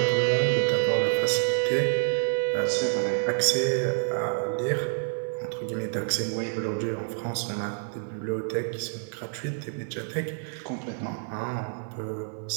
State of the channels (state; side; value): silent; left; digital silence